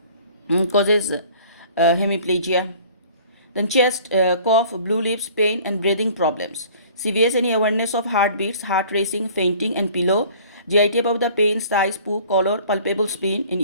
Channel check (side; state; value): both; inverted; correlation -0.51